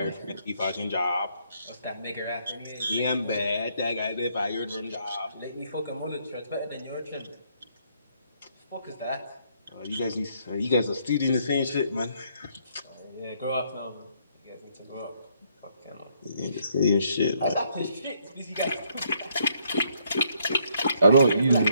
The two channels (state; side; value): inverted; both; correlation -0.70